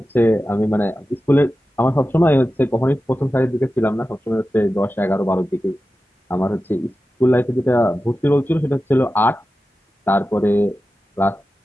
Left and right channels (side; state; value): both; normal; correlation 0.93